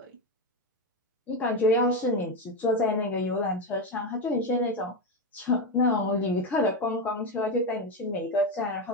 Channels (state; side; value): normal; both; correlation 0.12